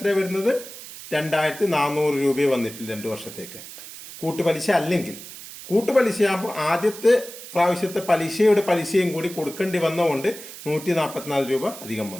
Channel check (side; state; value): right; noise; hiss, 14 dB below the sound